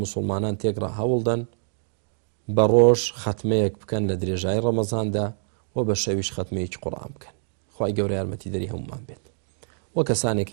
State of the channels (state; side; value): silent; left; digital silence